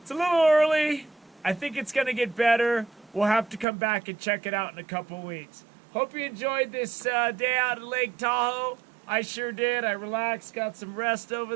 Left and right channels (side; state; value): left; drops out; at 3.7 s